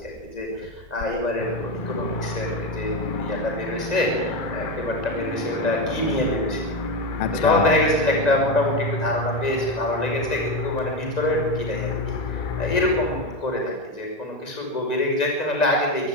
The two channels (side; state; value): right; late; 1.9 ms